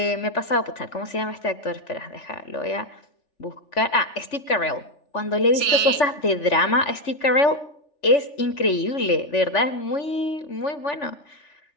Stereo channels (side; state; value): right; late; 3.4 ms